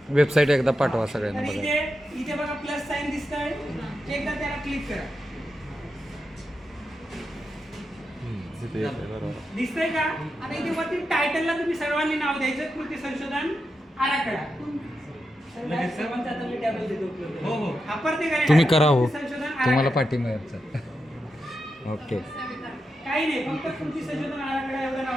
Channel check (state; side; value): normal; both; correlation 0.88